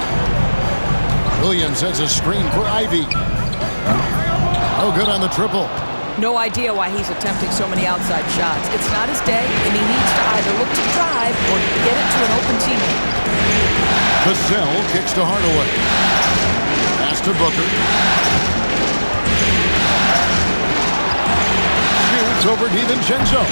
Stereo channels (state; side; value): inverted; both; correlation -1.00